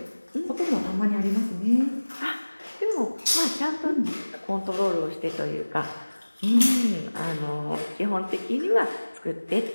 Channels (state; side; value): inverted; both; correlation -1.00